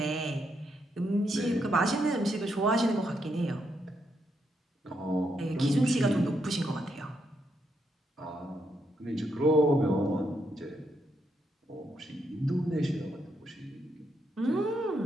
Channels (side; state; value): both; normal; correlation 0.79